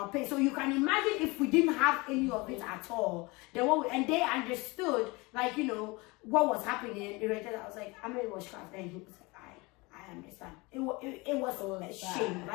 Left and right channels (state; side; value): quieter; right; 25.0 dB